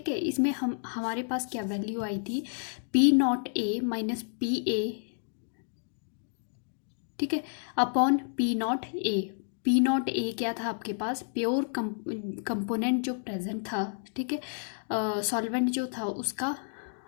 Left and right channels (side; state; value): right; silent; digital silence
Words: है, इसमें हमारे पास क्या वैल्यू आई थी, P not a minus P A, ठीक है, upon P not a. P not a क्या था आपके पास, प्योर कंपोनेंट जो प्रेजेंट था. ठीक है, सॉल्वेंट जो था उसका